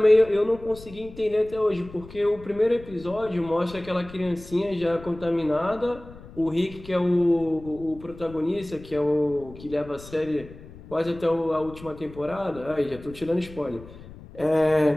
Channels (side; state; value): left; noise; rumble, 18 dB below the sound